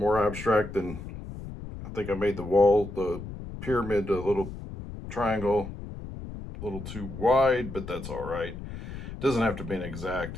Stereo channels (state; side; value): noise; left; rumble, 10 dB below the sound